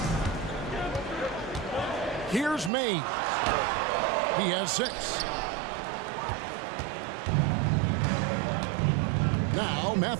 Here's May. He has 6. Now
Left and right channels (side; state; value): left; drops out; at 2.7 s